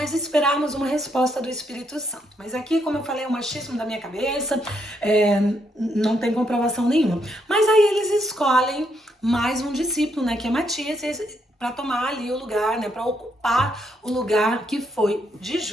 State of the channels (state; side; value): normal; both; correlation 0.76